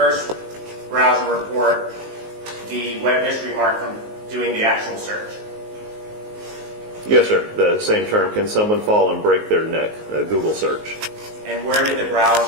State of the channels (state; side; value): late; left; 19 ms